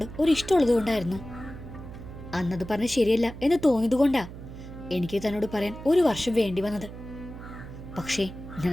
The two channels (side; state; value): right; noise; hum, 13 dB below the sound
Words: ഒരു ഇഷ്ടമുള്ളത് കൊണ്ടായിരുന്നു. അന്നത് പറഞ്ഞ ശരിയല്ല എന്ന് തോന്നിയത് കൊണ്ടാ എനിക്ക് തന്നോട് പറയാൻ 1 വർഷം വേണ്ടി വന്നത്. പക്ഷേ